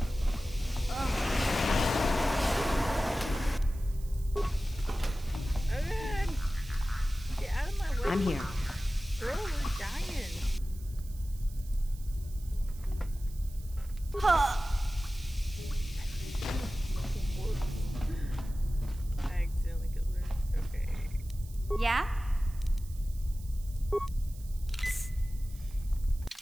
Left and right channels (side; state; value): right; noise; hiss, 21 dB below the sound